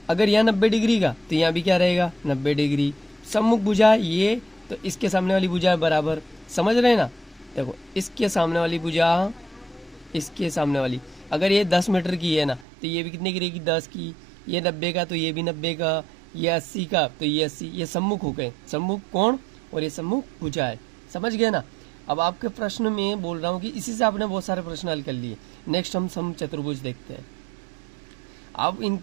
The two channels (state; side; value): drops out; left; at 12.7 s